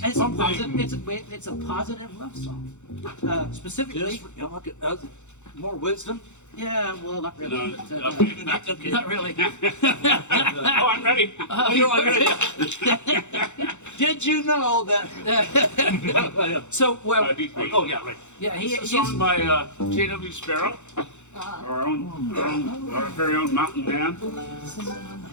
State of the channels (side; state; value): right; late; 0.84 ms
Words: It's a positive love song. Specifically, More wisdom? yeah, well, not really. No, but, okay. Not really. Oh, I'm ready. Did you know that? So, well, Deep Creek. Oh, yeah, right. yeah, It's a song by J.W. Sparrow, our very own mountain man.